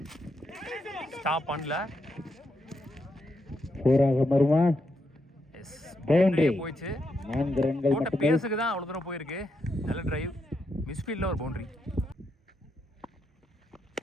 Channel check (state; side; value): normal; both; correlation 0.81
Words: stop பண்ணல, போயிடுச்சு. போட்ட பேஸுக்கு தான் அவ்வளோ தூரம் போயிருக்கு. நல்ல டிரைவ், மிஸ்ஃபீல்டில் ஒரு பவுண்டரி.